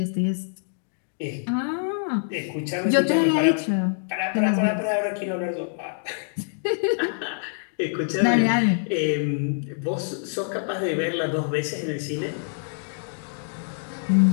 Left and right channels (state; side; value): silent; right; digital silence